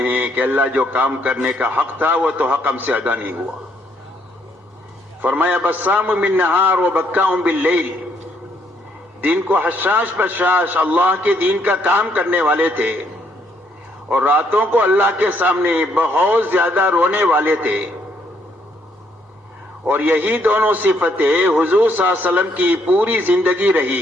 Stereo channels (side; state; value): both; normal; correlation 0.70